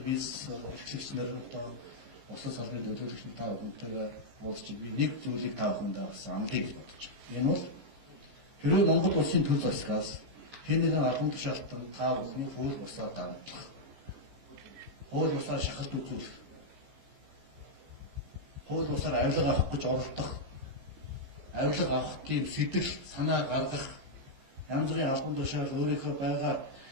бизнес эрхлэгч нар одоо улсын салбарын төлөөлөгч та бүхэнтэйгээ уулзч би нэг зүйлийг та бүхэндээ бас амлыг гэж бодож байна. Энэ бол хэрвээ Монгол улсын төр засгаас хэн нэгэн албан тушаалтан та бүхний хууль бусаар давтлах, хууль бусаар шахалт үзүүлэх, хууль бусаар авилга авах гэж оролдох, авилга авах тийм сэтэл санаа гаргах, янз бүрийн албан тушаал өөрийнхөө байгаа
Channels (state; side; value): late; left; 15 ms